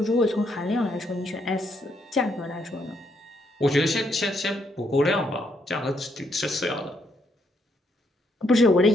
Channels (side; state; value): both; normal; correlation 0.75